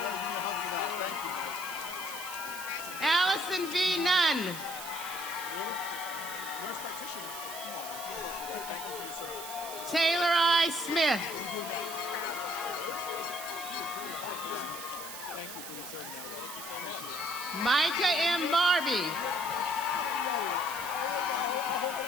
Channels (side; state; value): right; noise; hiss, 9 dB below the sound